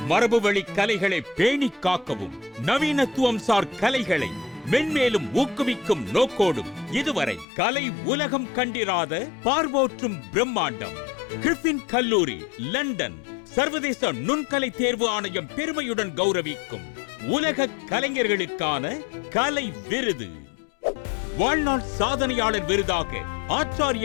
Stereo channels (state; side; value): drops out; right; at 7.5 s